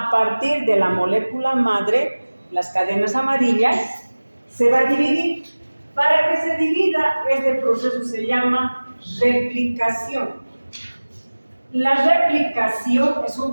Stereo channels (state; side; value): inverted; both; correlation -1.00